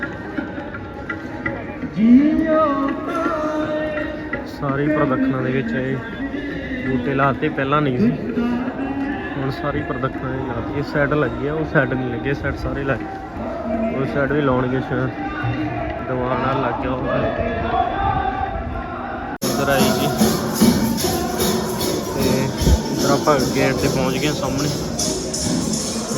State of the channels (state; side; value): identical; both; correlation 1.00